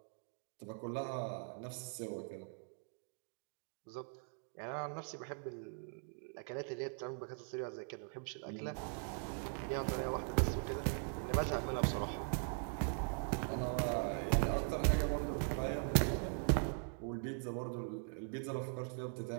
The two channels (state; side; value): silent; left; 50 dB below the other